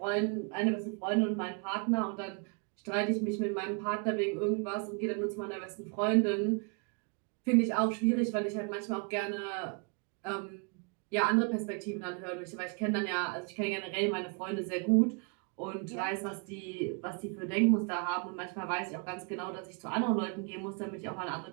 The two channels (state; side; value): quieter; left; 36.1 dB